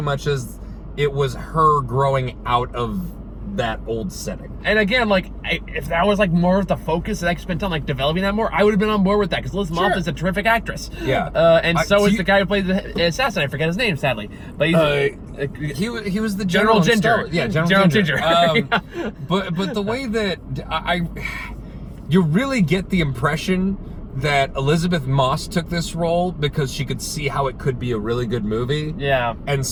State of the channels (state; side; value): identical; both; correlation 1.00